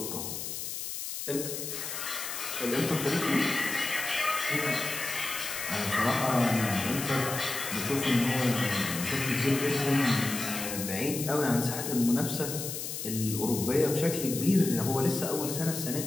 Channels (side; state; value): left; noise; hiss, 6 dB below the sound